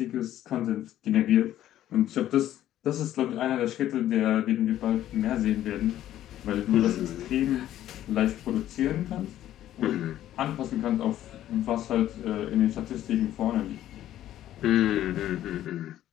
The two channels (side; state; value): right; quieter; 12.6 dB